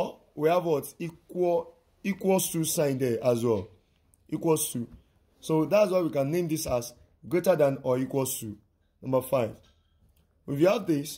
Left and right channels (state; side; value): identical; both; correlation 1.00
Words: we have what? Equals to sign there as well. Equals to. So that's why we can name this as greater than or equals to. Number 5. If you have